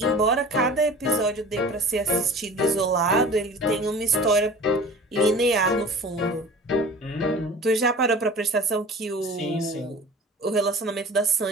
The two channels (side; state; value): both; normal; correlation 0.41